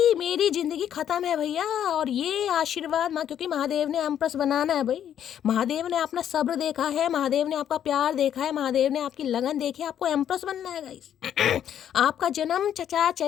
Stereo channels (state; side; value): quieter; right; 9.8 dB